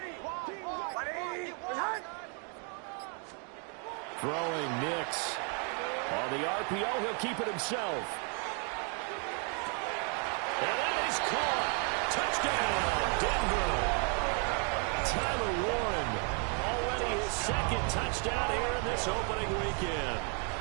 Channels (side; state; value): left; quieter; 39.2 dB